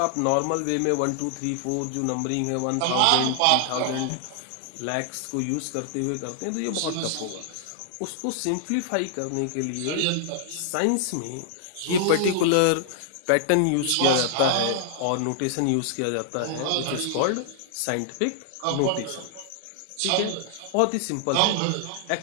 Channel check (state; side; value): different; both; correlation -0.01